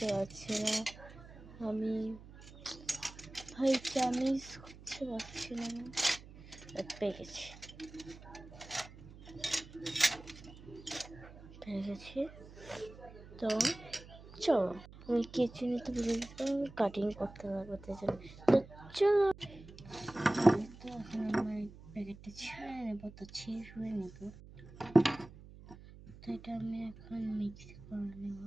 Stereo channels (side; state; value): right; noise; hum, 18 dB below the sound